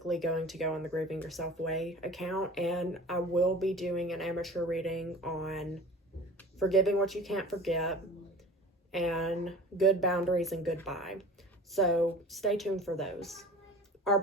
going to go on the Grieving Yourself Way account, and I will be doing an amateur reading on Forgiving What You Can't Forget and Good Boundaries and Goodbye. So stay tuned for those. Our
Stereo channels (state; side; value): normal; both; correlation 0.41